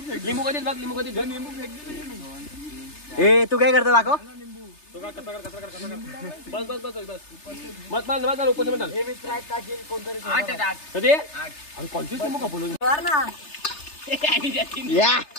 कधीच बघ. लिंबू कधीच ए तू काय करतो दाखव. तो का कसा कर. बस बस बस बस मत माल मत ओपन मत. कधी अरे कोणतीच लिंबू खपलो या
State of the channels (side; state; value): right; late; 3.3 ms